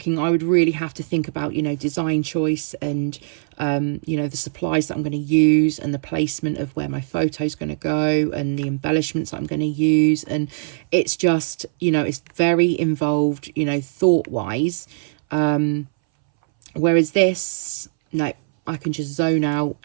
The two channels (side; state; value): left; silent; 63 dB below the other